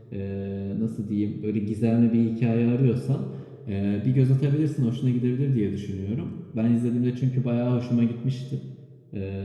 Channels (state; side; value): identical; both; correlation 1.00